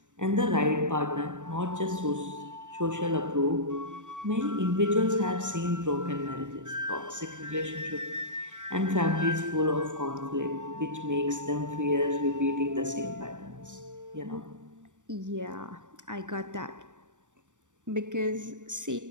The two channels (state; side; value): late; left; 0.85 ms